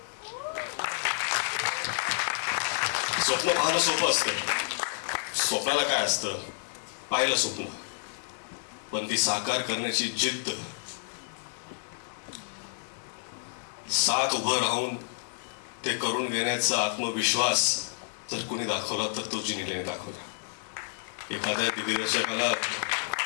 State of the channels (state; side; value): silent; right; digital silence